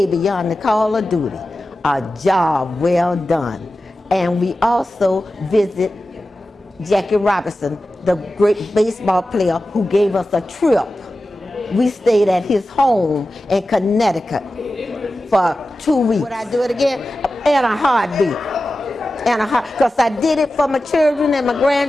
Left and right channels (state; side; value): normal; both; correlation 0.94